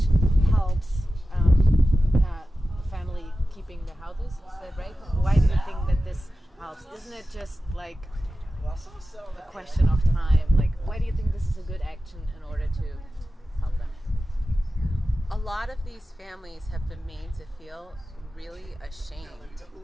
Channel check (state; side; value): normal; both; correlation 0.94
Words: helps family keeping their houses? Is that right? Why do you think that this helps? Isn't it just like a question of time? Like, why do you think this is a good action in order to help them? A lot of these families have been made to feel really ashamed